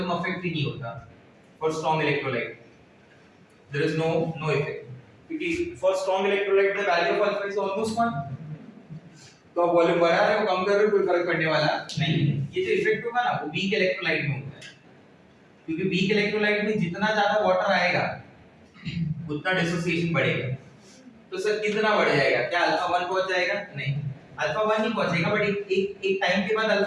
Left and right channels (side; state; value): both; identical; correlation 1.00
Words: affect ही नहीं होता। For strong electrolyte, there is no effect. क्योंकि for strong electrolyte the value of alpha is almost 1, तो आप वॉल्यूम बढ़ा रहे हो कम कर रहे हो कोई फर्क पड़ने वाला नहीं। ये जो इफेक्ट होगा ना वो वीक इलेक्ट्रोलाइट में होता है, क्योंकि वीक इलेक्ट्रोलाइट में जितना ज्यादा वाटर आएगा उतना डिसोसिएशन बढ़ेगा। तो सर कितना बढ़ जाएगा? क्या अल्फा 1 पहुंच जाएगा? नहीं, अल्फा 1 नहीं पहुंचेगा, बट एक टाइम के बाद